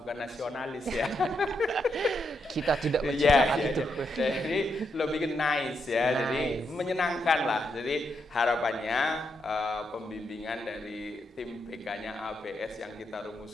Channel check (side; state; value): both; normal; correlation 0.81